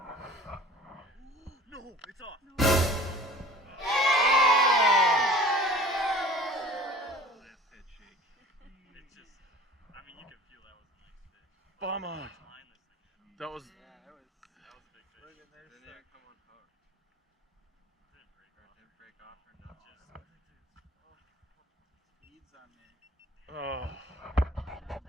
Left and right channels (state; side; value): normal; both; correlation 0.45